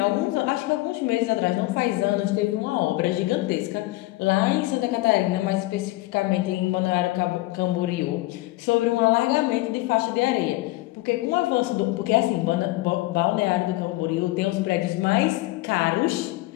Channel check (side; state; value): right; quieter; 19.3 dB